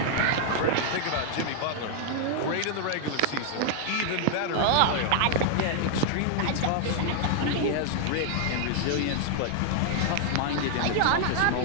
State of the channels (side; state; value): both; different; correlation 0.00